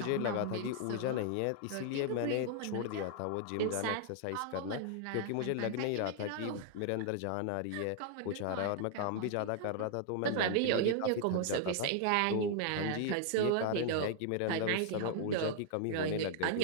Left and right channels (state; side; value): different; both; correlation -0.01